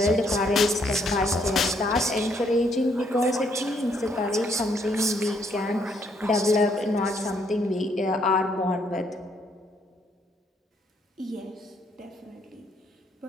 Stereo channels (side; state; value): both; normal; correlation 0.70